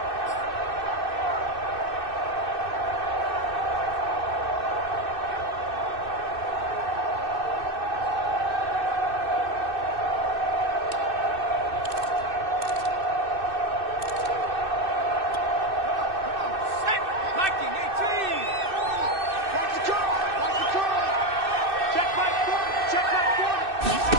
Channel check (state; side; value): late; left; 2.6 ms